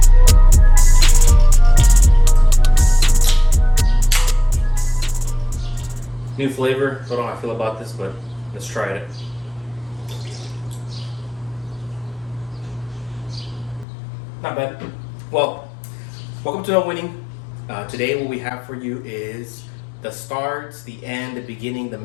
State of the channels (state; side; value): drops out; right; at 13.9 s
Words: flavor. Don't know how I feel about this, but let's try it. Not bad. Well, welcome to No Winning. Today what we have for you is the start, the end, the beginning, the